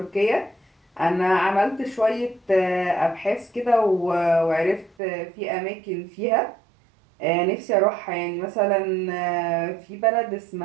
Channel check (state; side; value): drops out; left; at 5.0 s